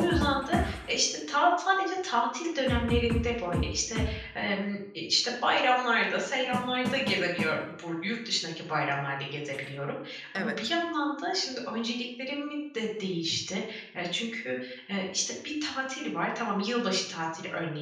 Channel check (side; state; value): both; identical; correlation 1.00